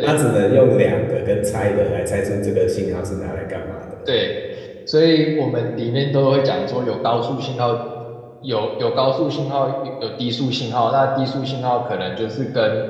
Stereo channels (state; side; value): identical; both; correlation 1.00